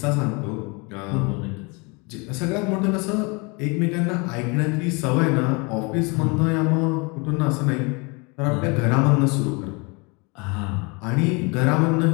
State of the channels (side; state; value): right; quieter; 29.9 dB